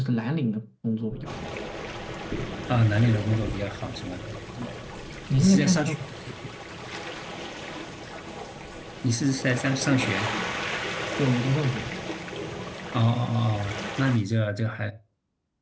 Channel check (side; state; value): both; identical; correlation 1.00